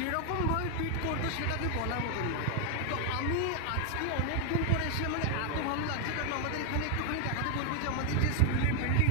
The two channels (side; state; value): both; different; correlation 0.00